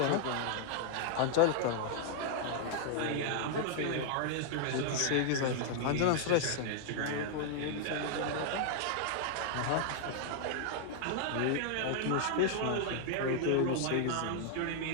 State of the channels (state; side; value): different; both; correlation -0.01